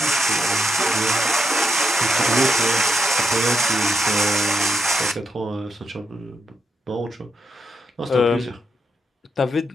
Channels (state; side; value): normal; both; correlation 0.82